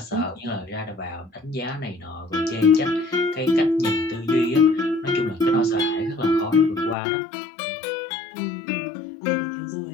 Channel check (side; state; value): right; drops out; at 7.0 s